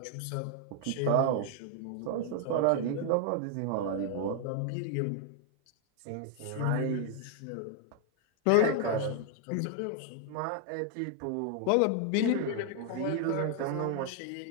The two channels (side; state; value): both; different; correlation 0.00